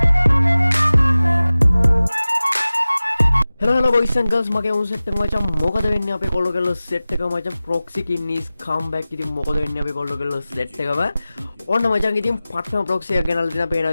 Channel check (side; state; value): both; inverted; correlation -0.97